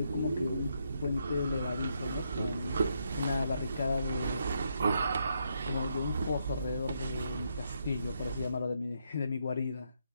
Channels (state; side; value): inverted; both; correlation -0.78